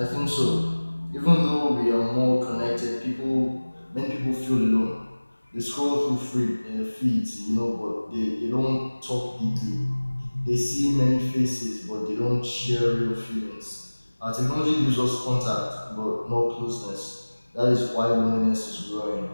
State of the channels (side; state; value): both; inverted; correlation -1.00